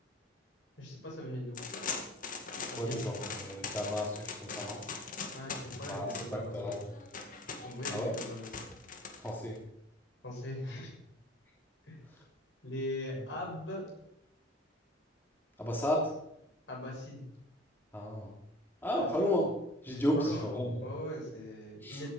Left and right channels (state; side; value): normal; both; correlation 0.47